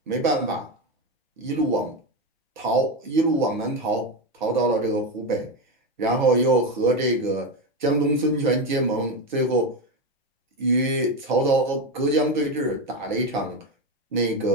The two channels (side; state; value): both; normal; correlation 0.14